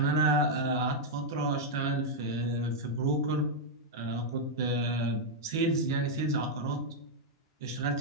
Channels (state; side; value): normal; both; correlation -0.02